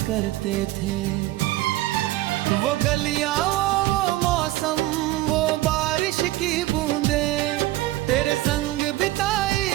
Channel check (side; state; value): left; quieter; 17.1 dB